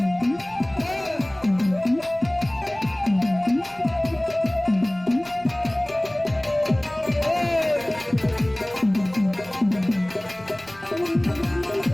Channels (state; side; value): noise; right; rumble, 25 dB below the sound